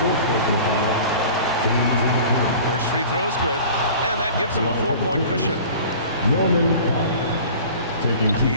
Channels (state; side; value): inverted; both; correlation -0.42